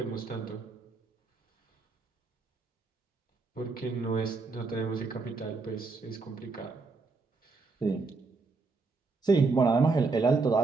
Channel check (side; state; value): left; quieter; 4.1 dB